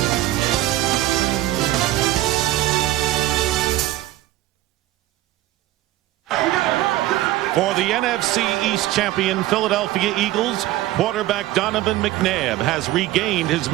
For the NFC East champion Philadelphia Eagles, quarterback Donovan McNabb has regained his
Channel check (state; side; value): quieter; left; 15.6 dB